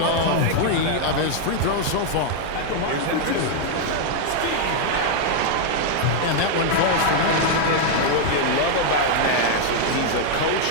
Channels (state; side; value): different; both; correlation 0.00